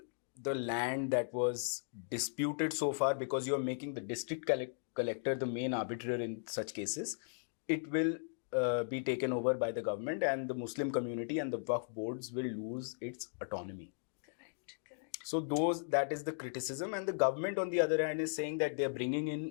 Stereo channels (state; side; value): silent; right; digital silence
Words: the land that was disputed so far, because you are making the district collector the main arbiter in such cases, it will be taken over by the government, and the Muslim community and the Waqf boards will lose its autonomy. Correct. So that is the criticism, and the government on the other hand is saying that they are bringing